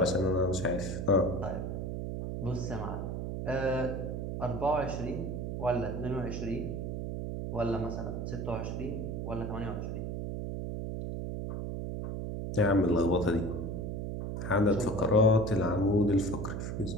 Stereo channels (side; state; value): right; noise; hum, 4 dB below the sound